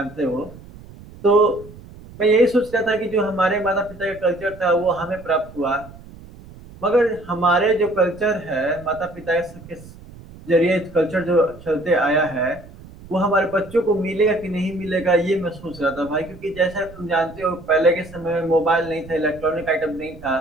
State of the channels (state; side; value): noise; right; rumble, 19 dB below the sound